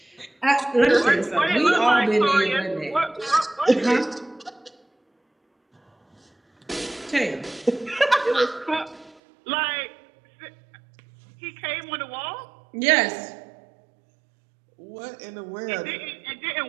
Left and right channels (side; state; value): left; drops out; at 9.2 s